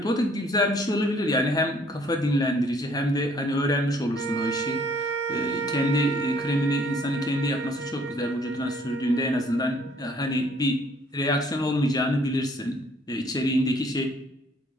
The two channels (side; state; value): both; normal; correlation 0.61